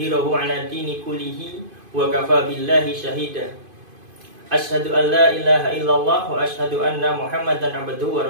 'ala dini kullihi wa kafa billahi shahida. Asyhadu an la ilaha illallah wa asyhadu anna Muhammadan abduhu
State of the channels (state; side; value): late; left; 2.5 ms